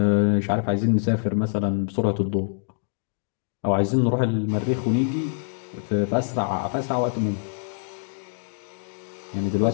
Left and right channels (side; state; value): right; silent; digital silence